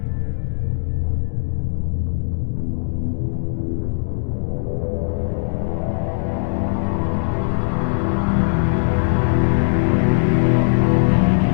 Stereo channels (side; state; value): right; silent; digital silence